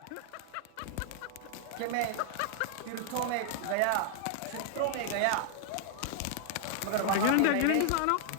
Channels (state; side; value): different; both; correlation -0.01